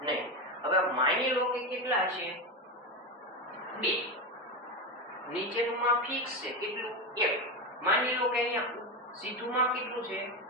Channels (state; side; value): normal; both; correlation 0.16